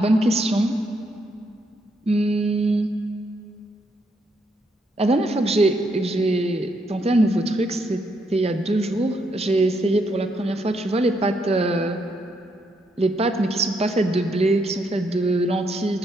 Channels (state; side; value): normal; both; correlation 0.76